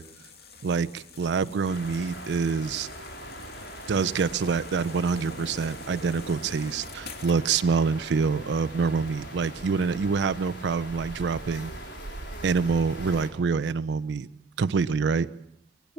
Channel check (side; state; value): left; quieter; 4.7 dB